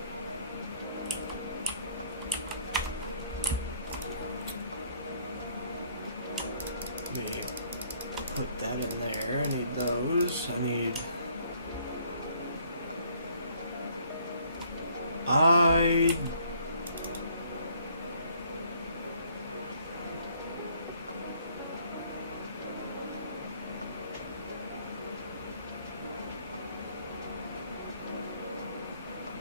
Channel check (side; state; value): both; inverted; correlation -0.63